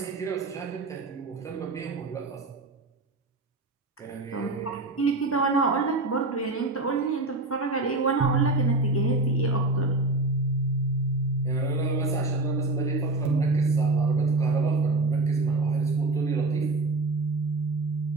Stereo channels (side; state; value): left; quieter; 3.1 dB